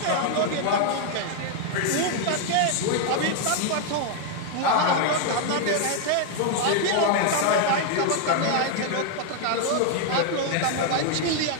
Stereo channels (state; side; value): different; both; correlation 0.00